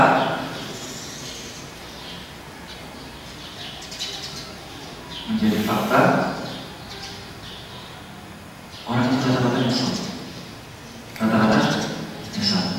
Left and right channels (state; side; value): identical; both; correlation 1.00